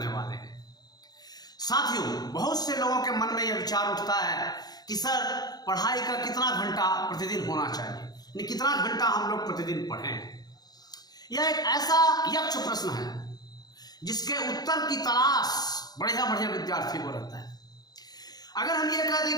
वाले हैं। साथियों, बहुत से लोगों के मन में यह विचार उठता है कि सर पढ़ाई का कितना घंटा प्रतिदिन होना चाहिए, यानी कितना घंटा हम लोग प्रतिदिन पढ़ें। यह एक ऐसा यक्ष प्रश्न है जिसके उत्तर की तलाश बढ़िया बढ़िया विद्यार्थियों को रहता है। अगर हम ये कह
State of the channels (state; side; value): late; right; 0.19 ms